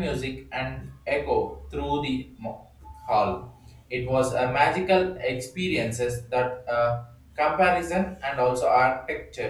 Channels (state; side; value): identical; both; correlation 1.00